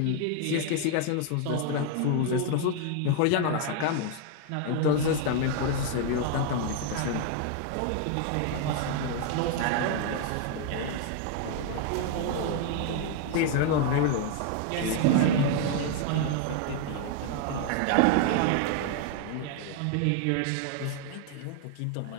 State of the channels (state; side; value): different; both; correlation 0.00